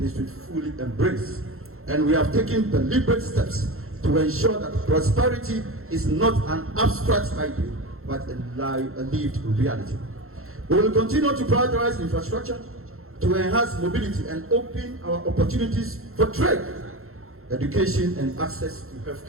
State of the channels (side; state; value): left; late; 0.62 ms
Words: fully embrace. And we have taken deliberate steps to ensure that prosperity is not an abstract idea, but a lived reality. We will continue to prioritize infrastructure to enhance mobility and open our opportunities for trade, education, and access to